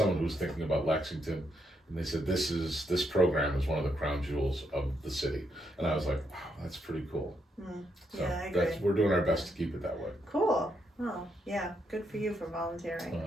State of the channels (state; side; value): normal; both; correlation 0.78